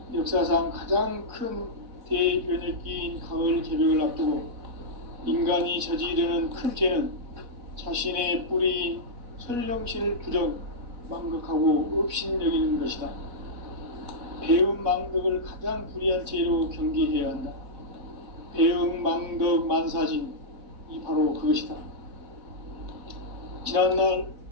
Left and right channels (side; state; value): left; late; 4.0 ms